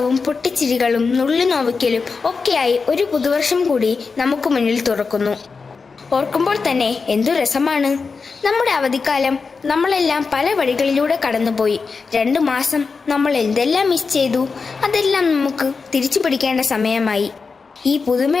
പൊട്ടിച്ചിരികളും നുള്ളിനോവിക്കലും ഒക്കെയായി ഒരു പുതുവർഷം കൂടി നമുക്ക് മുന്നിൽ തുറക്കുന്നു. ഓർക്കുമ്പോൾ തന്നെ എന്തു രസമാണ്! നമ്മുടെ അവധിക്കാലം നമ്മളെല്ലാം പല വഴികളിലൂടെ കടന്നുപോയി. 2 മാസം നമ്മൾ എന്തെല്ലാം മിസ് ചെയ്തു. അതെല്ലാം നമുക്ക് തിരിച്ചു പിടിക്കേണ്ട സമയമായി. ഈ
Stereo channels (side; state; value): right; quieter; 4.8 dB